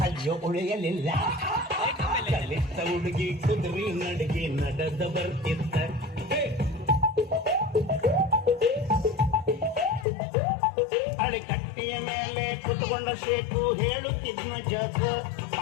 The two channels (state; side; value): drops out; right; at 10.1 s